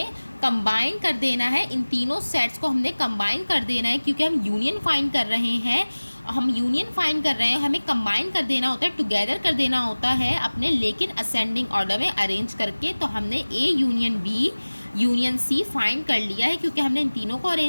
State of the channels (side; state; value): both; inverted; correlation -1.00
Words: कंबाइन कर देना है, इन तीनों सेट्स को हमने कंबाइन कर देना है, क्योंकि हम यूनियन फाइंड कर रहे हैं। हम यूनियन फाइंड कर रहे हैं, हमें कंबाइन कर देना होता है, टुगेदर कर देना होता है अपने, लेकिन असेंडिंग ऑर्डर में अरेंज करके। तो हमने A union B union C find कर लिया है, क्योंकि हमने इन तीनों को